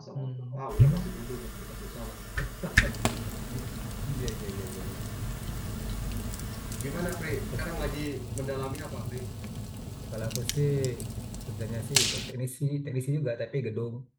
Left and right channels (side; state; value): both; identical; correlation 1.00